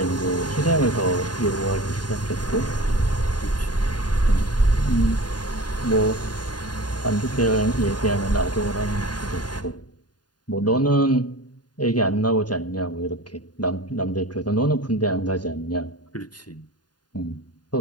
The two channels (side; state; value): right; late; 0.70 ms